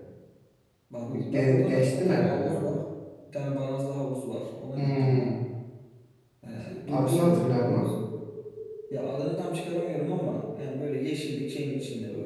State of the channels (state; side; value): identical; both; correlation 1.00